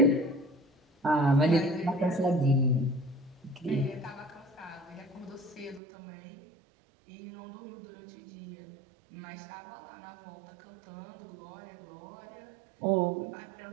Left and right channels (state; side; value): drops out; left; at 5.8 s